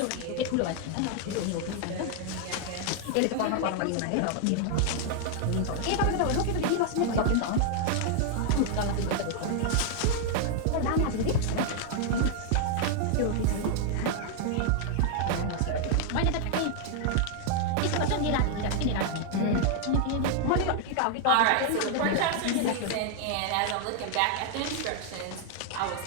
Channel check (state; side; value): different; both; correlation 0.00